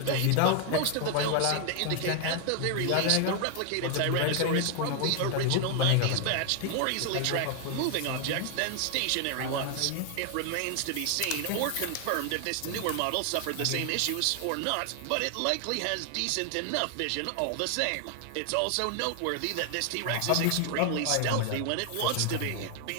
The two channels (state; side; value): different; both; correlation 0.00